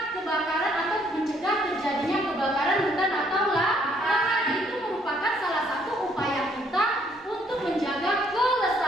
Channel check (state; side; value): normal; both; correlation 0.66